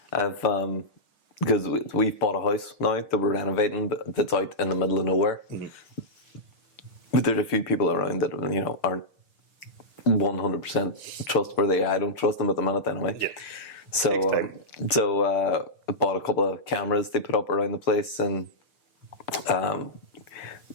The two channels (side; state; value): right; late; 6.7 ms